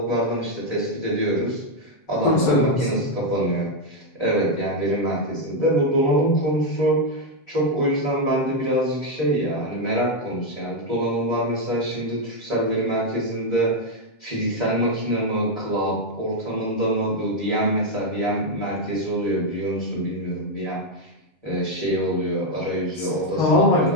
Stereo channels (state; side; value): late; right; 7.5 ms